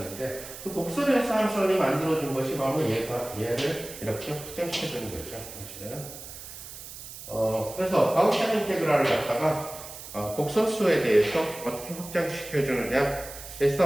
그 복소변수 함수론이 만들어준 것이 바로 얘를 이렇게 확장시켜주는 거죠. 사실은 그래서 가우시안 인테그랄을 갖다가 복소수에 대해서 어떻게 확장시켜주느냐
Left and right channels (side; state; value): right; noise; hiss, 13 dB below the sound